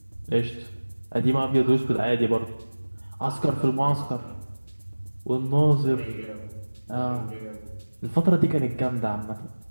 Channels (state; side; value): inverted; both; correlation -1.00